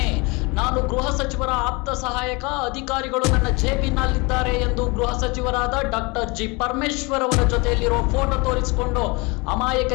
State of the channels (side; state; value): right; quieter; 27.4 dB